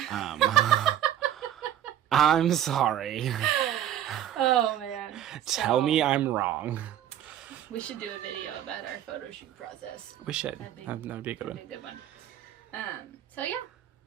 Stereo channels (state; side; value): quieter; left; 11.1 dB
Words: I'm sorry. Oh man. Tell me I'm wrong. We should do a video about our photo shoot process. We should. That'd be- That would be a good That'd one. be a good one. So yeah,